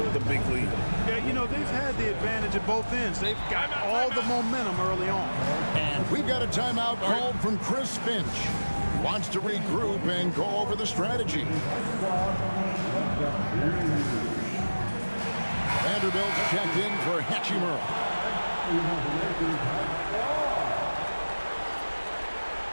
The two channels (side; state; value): both; inverted; correlation -1.00